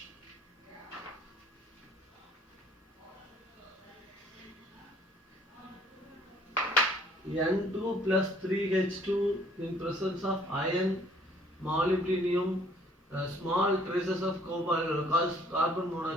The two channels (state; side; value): normal; both; correlation 0.60